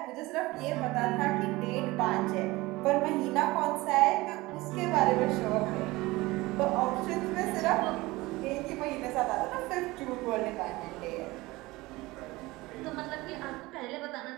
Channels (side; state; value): left; quieter; 20.7 dB